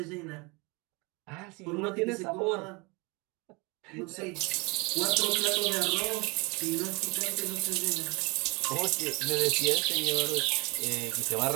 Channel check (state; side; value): quieter; left; 27.6 dB